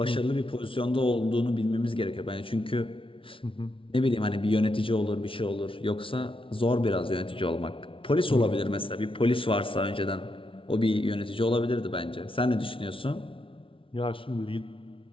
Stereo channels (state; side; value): late; right; 0.25 ms